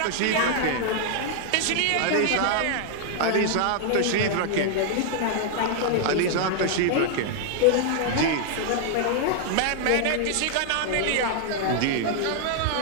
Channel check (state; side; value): different; both; correlation 0.00